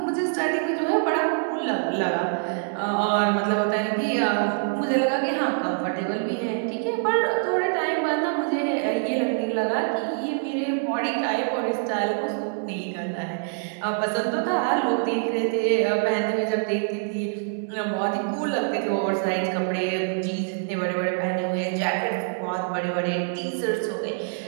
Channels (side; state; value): left; silent; 62 dB below the other